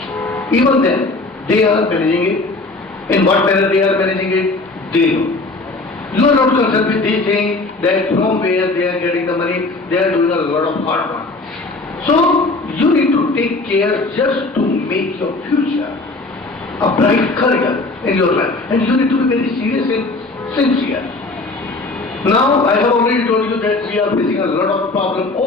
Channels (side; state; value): right; quieter; 3.3 dB